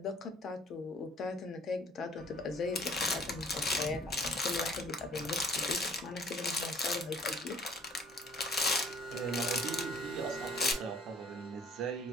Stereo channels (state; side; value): normal; both; correlation 0.55